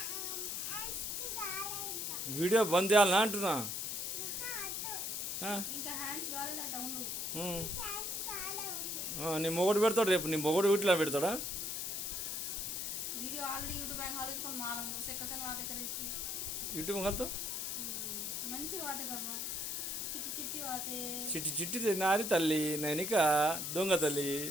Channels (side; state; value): left; noise; hiss, 2 dB below the sound